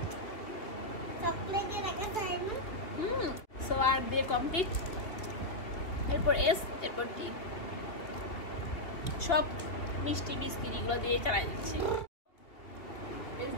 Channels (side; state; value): right; late; 3.0 ms